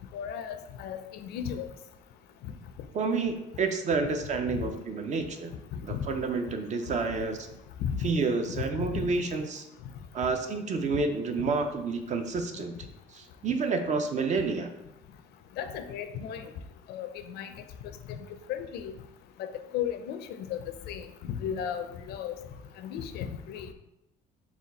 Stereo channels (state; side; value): normal; both; correlation 0.40